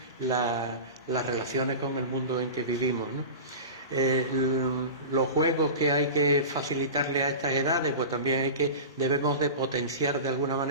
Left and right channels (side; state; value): both; inverted; correlation -0.30